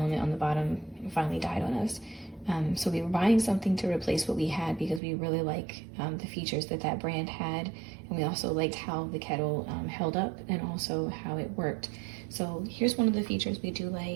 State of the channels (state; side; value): drops out; left; at 5.0 s